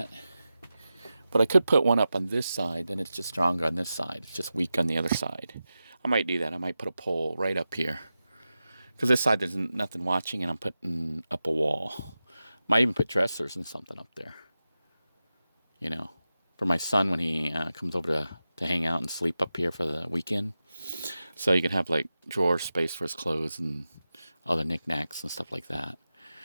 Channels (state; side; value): inverted; both; correlation -0.93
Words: But I could put one up on this side, then it's just stronger on this side. It's just weak on the other side. I might do that. I might put a pole right up here. Because this side there's nothing watching, and I'm putting up a wall. Might even put dressers and something up there. You know, for my son when he comes over to hang out and sleep up here for the weekend. So you can have like drawer space for his clothes and other knickknacks and stuff like that.